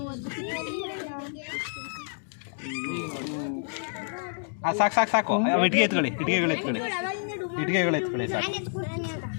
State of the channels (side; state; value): right; silent; digital silence